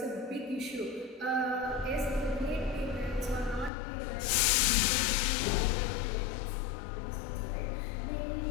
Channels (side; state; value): right; drops out; at 3.7 s